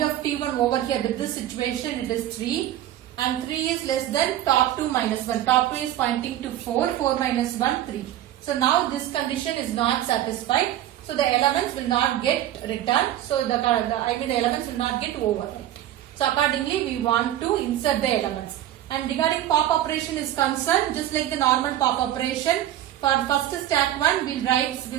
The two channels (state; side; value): quieter; left; 12.7 dB